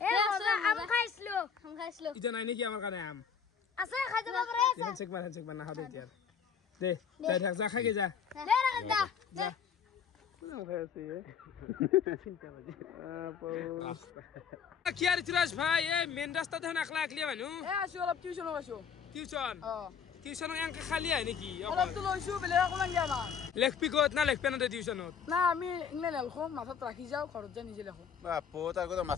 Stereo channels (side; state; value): right; quieter; 7.0 dB